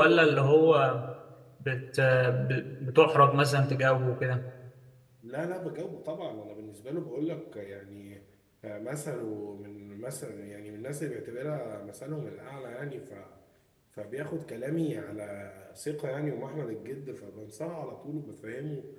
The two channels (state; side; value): identical; both; correlation 1.00